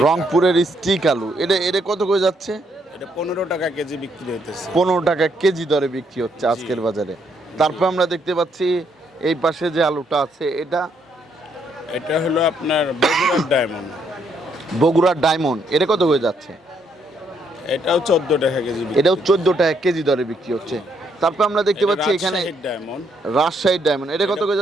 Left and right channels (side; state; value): both; normal; correlation 0.73